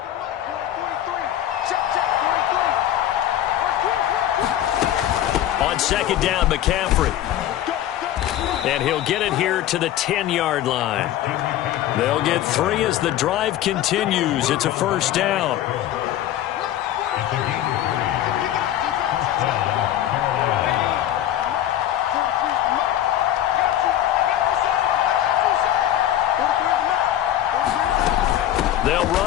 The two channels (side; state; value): right; quieter; 12.2 dB